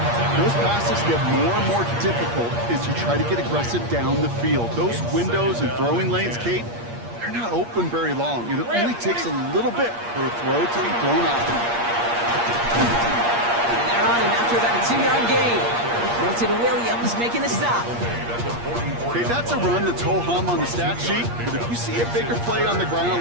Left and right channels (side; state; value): left; late; 8.5 ms